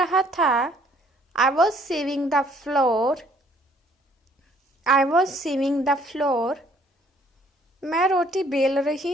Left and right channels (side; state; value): both; normal; correlation 0.61